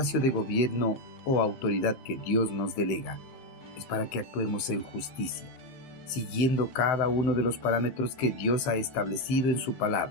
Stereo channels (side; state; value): right; late; 15 ms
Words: de gobierno o autoridad que Dios nos delega es para que actuemos en justicia, siguiendo cada uno de los parámetros que Dios ha establecido en su